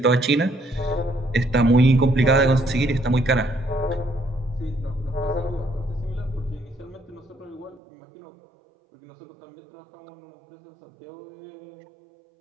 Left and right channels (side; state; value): left; drops out; at 7.8 s